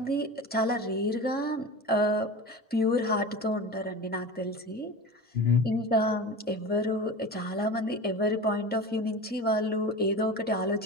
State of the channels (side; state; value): both; normal; correlation 0.31